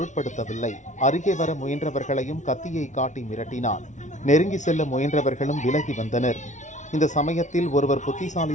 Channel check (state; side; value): late; right; 0.36 ms